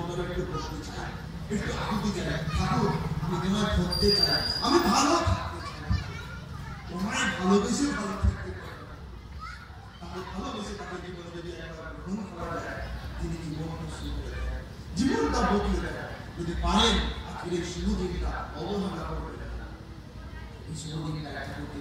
একটু বসতে চাই, একটু আকুতি চাই, ঠাকুর আমি তোমায় ধরতে চাই, আমি ভালো থাকতে চাই, তোমায় ভালোবেসে ভালো থাকতে চাই। তাকে ভালোবেসে তাকে জীবনে যদি একবার গ্রহণ করা যায়, তিনি জীবনটা শুরু করে দেয়, জীবনটা বদলে দেয়। যদি পারেন আজকের এই শুভ দিনটা অবহেলা করবে, এই শুভ দিনটা ঠাকুরকে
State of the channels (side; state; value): both; identical; correlation 1.00